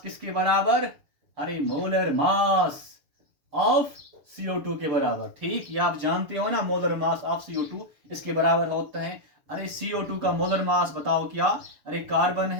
किसके बराबर, अरे मोलर मास ऑफ CO2 के बराबर। ठीक, ये आप जानते हो ना, मोलर मास ऑफ CO2 इसके बराबर होता है। अरे CO2 का मोलर मास बताओ क्या, अरे कार्बन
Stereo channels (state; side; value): late; left; 6.9 ms